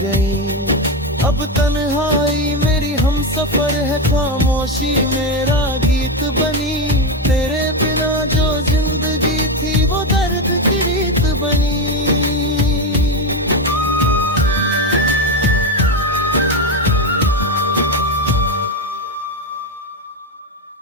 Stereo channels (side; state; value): both; normal; correlation 0.12